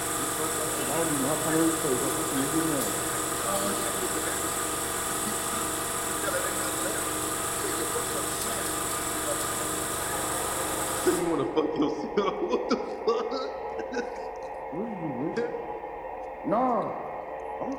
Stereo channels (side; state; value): both; identical; correlation 1.00